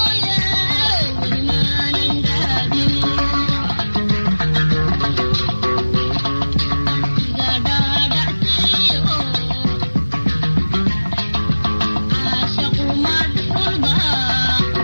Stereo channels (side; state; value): both; inverted; correlation -1.00